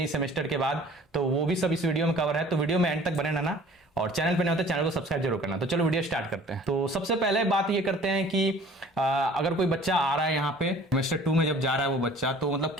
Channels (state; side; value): normal; both; correlation 0.49